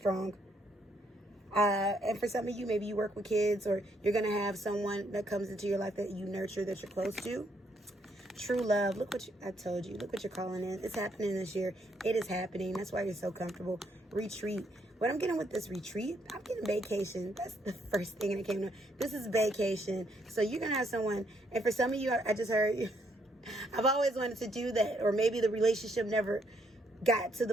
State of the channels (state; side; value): normal; both; correlation 0.72